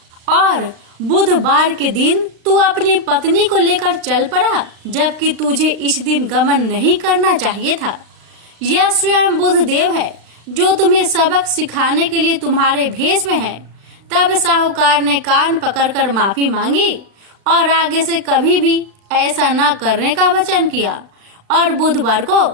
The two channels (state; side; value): late; left; 35 ms